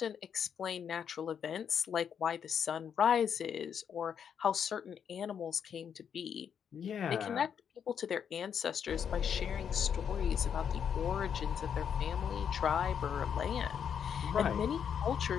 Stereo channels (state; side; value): quieter; right; 7.8 dB